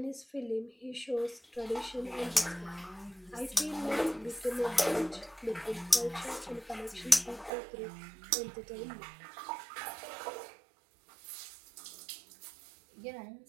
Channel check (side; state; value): left; drops out; at 7.5 s